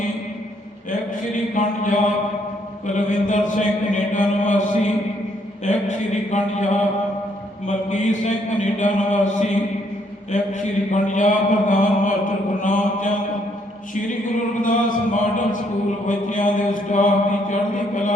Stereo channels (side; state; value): both; normal; correlation 0.70